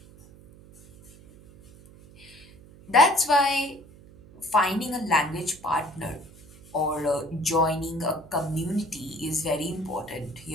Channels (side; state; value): right; noise; hum, 22 dB below the sound